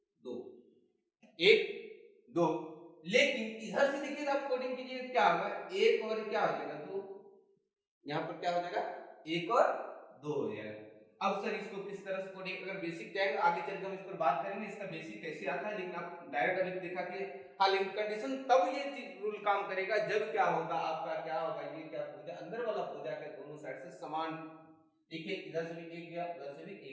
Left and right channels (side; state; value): both; identical; correlation 1.00